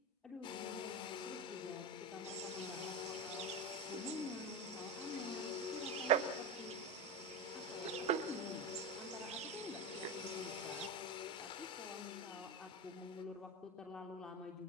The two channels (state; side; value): normal; both; correlation 0.18